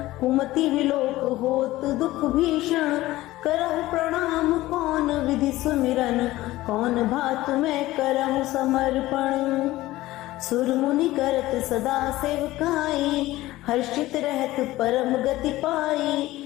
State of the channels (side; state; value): right; quieter; 17.1 dB